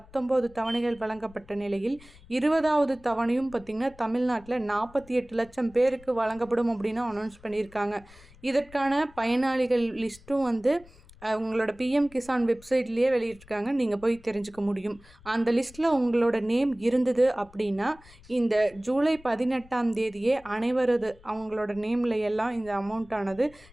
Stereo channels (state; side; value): noise; left; rumble, 24 dB below the sound